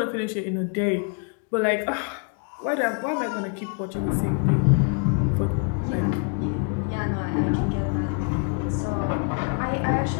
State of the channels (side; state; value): right; quieter; 37.7 dB